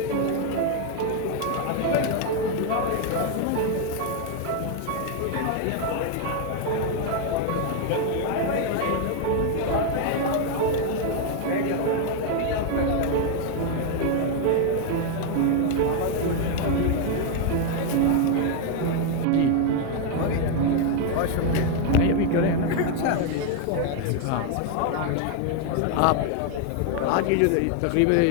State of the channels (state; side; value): different; both; correlation 0.00